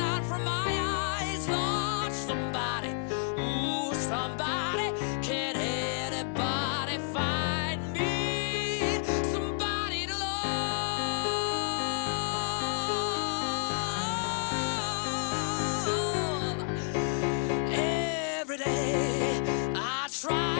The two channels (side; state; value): right; silent; digital silence